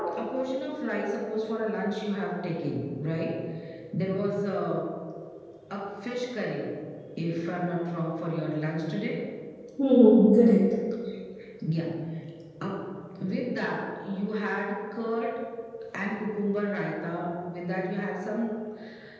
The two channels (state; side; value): identical; both; correlation 1.00